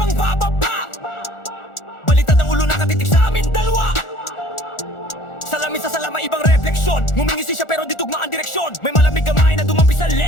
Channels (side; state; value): right; late; 1.4 ms